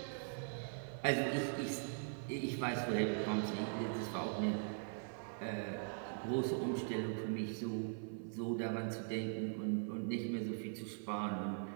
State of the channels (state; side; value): silent; left; 50 dB below the other